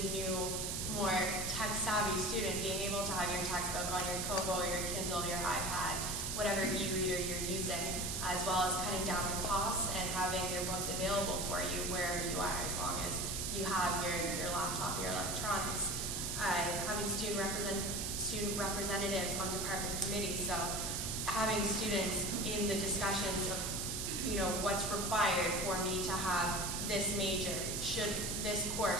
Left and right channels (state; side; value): noise; right; hiss, 2 dB below the sound